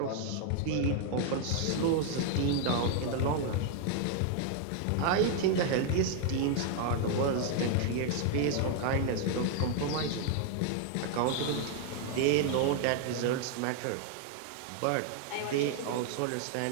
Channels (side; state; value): both; different; correlation 0.00